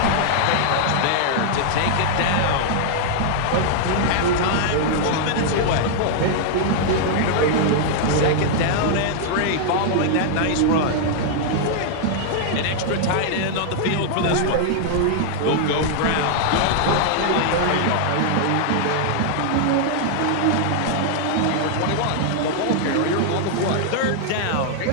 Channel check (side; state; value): both; different; correlation -0.01